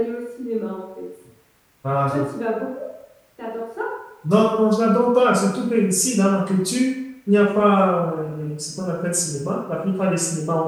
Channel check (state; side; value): identical; both; correlation 1.00